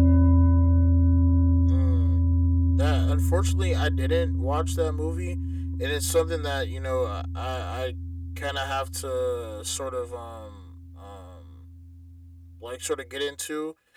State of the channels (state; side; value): identical; both; correlation 1.00